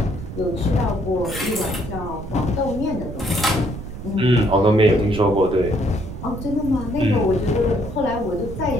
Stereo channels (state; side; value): noise; right; rumble, 9 dB below the sound